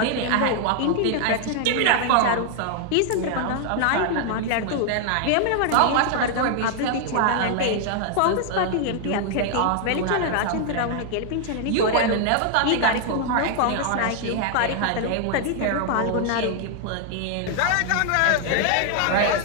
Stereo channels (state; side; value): different; both; correlation 0.00